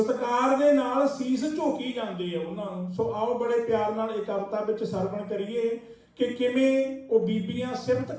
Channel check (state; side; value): identical; both; correlation 1.00